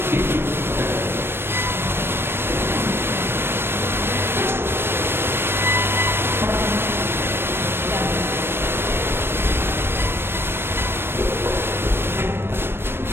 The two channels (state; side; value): late; left; 0.11 ms